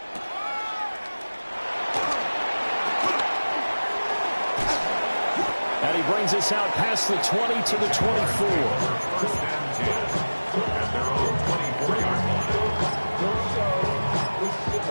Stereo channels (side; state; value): both; inverted; correlation -1.00